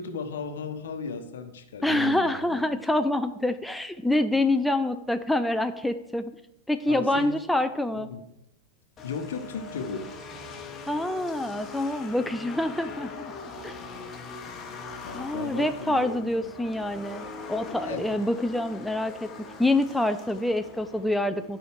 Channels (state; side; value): normal; both; correlation 0.78